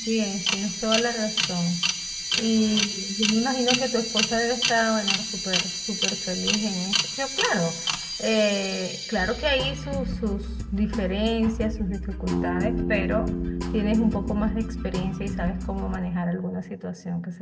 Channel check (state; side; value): identical; both; correlation 1.00